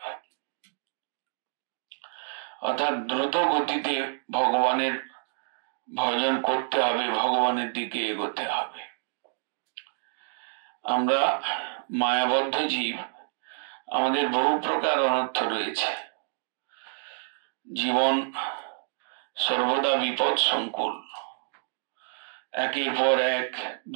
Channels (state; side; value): silent; left; digital silence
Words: অর্থাৎ দ্রুত গতিতে ভগবানের ভজন করতে হবে, ভগবানের দিকে এগোতে হবে। আমরা মায়াবদ্ধ জীব, আমাদের বহু প্রকার অনর্থ রয়েছে। জীবন সর্বদা বিপদ সংকুল, একের পর এক